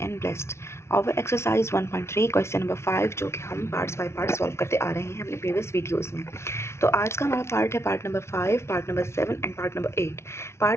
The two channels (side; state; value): right; late; 0.13 ms